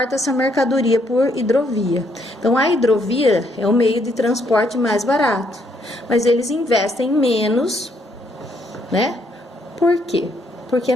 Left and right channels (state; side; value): normal; both; correlation 0.71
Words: essa mercadoria por hidrovia. Então, a hidrovia é o meio de transporte mais barato, mas eles investem menos, né? Por quê? Porque,